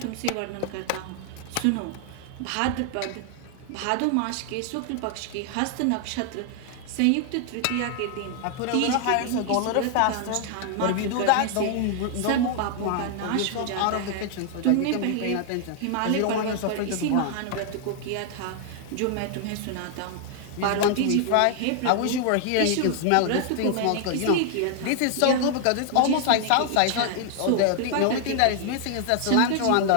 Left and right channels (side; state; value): both; different; correlation 0.00